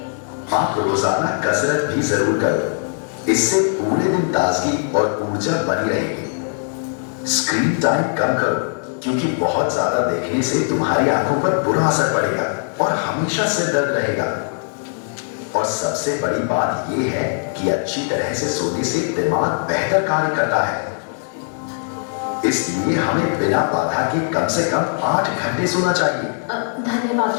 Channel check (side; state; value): right; silent; 66 dB below the other